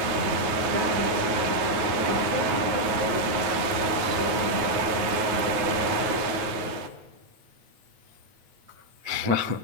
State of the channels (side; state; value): left; late; 9.4 ms